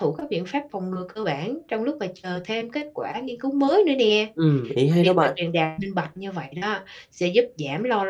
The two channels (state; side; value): identical; both; correlation 1.00